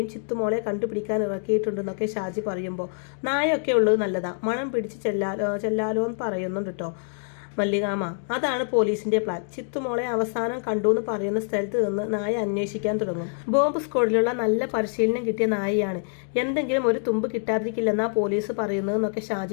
ചിത്തുമോളെ കണ്ടുപിടിക്കാൻ ഇറക്കിയിട്ടുണ്ടെന്നൊക്കെ ഷാജി പറയുമ്പോൾ നായയൊക്കെ ഉള്ളത് നല്ലതാ, മണം പിടിച്ച് ചെല്ലാലോ എന്ന് പറയുന്നുണ്ട് കേട്ടോ മല്ലികാമ. അതാണ് പോലീസിന്റെ പ്ലാൻ. ചിത്തുമോളെ അവസാനം കണ്ടു എന്ന് പറയുന്ന സ്ഥലത്ത് നിന്ന് നായ അന്വേഷിക്കാൻ തുടങ്ങും. ബോംബ് സ്ക്വാഡിലുള്ള നല്ല പരിശീലനം കിട്ടിയ നായയാണ്, എന്തെങ്കിലും ഒരു തുമ്പ് കിട്ടാതിരിക്കില്ലെന്നാ പോലീസ് പറയുന്നതെന്നൊക്കെ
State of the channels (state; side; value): silent; right; 61 dB below the other